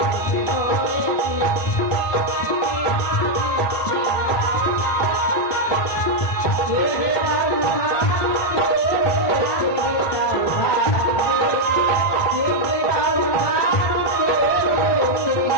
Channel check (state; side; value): late; right; 1.2 ms